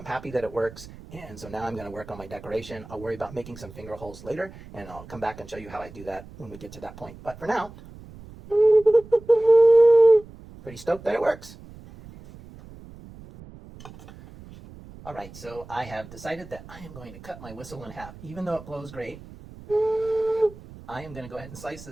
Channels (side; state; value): right; noise; rumble, 18 dB below the sound